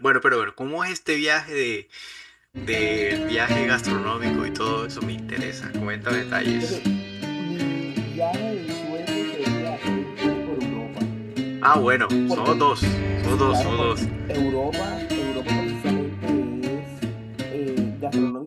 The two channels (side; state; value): both; identical; correlation 1.00